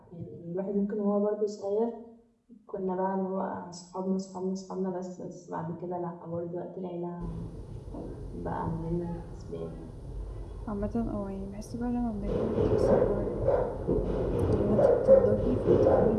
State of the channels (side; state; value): both; identical; correlation 1.00